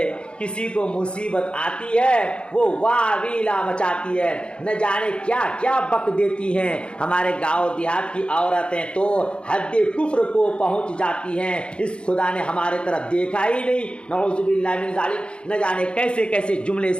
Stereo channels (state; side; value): late; right; 0.056 ms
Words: کسی کو مصیبت آتی ہے وہ واویلا مچاتی ہے، نہ جانے کیا کیا بک دیتی ہیں. ہمارے گاؤں دیہات کی عورتیں تو حد کفر کو پہنچ جاتی ہیں، اس خدا نے ہمارے طرف دیکھا ہی نہیں، نعوذ باللہ من ذالک. نہ جانے کیسے کیسے جملے